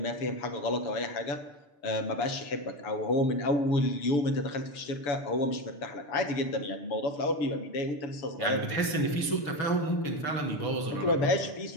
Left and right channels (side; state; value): right; late; 6.8 ms